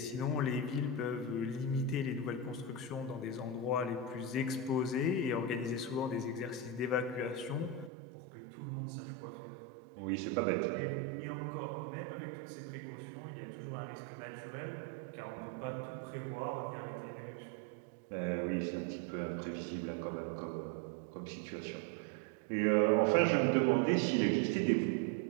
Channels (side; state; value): left; drops out; at 7.9 s